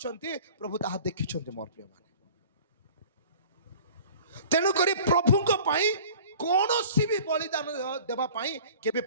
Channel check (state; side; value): inverted; both; correlation -0.45